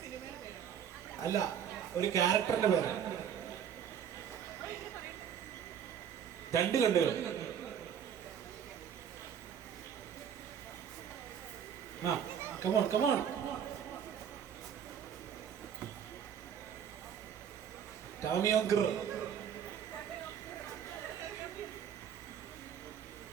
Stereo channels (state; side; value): quieter; left; 8.5 dB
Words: അല്ല, ഒരു ക്യാരക്ടറിന്റെ പേര്. രണ്ട് കണ്ടുകൾ. ആ കമോൺ കമോൺ. ടാമിയോങ്കർ.